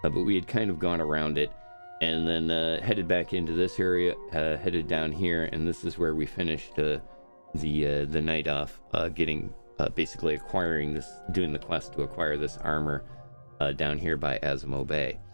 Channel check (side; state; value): both; inverted; correlation -1.00